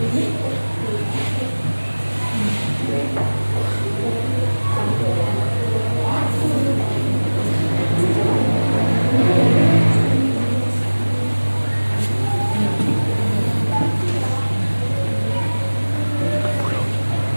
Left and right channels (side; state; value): both; inverted; correlation -1.00